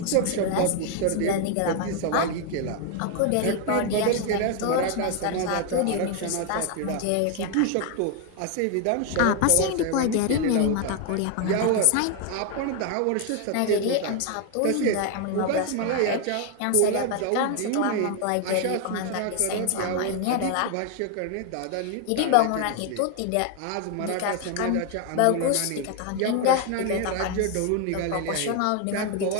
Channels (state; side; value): different; both; correlation 0.01